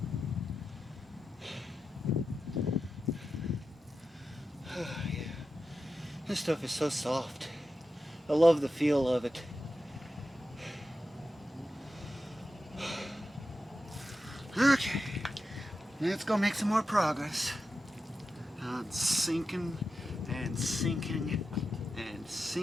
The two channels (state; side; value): normal; both; correlation 0.90